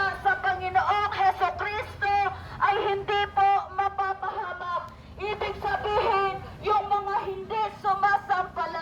sa Panginoong Hesukristo ay hindi po mapapahamak. Ibig sabihin, yung mga hindi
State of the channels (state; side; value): identical; both; correlation 1.00